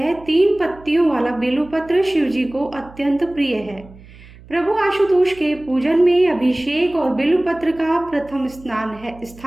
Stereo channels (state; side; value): noise; right; hum, 21 dB below the sound